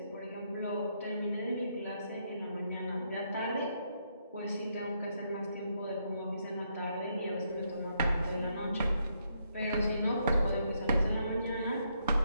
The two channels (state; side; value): inverted; both; correlation -0.76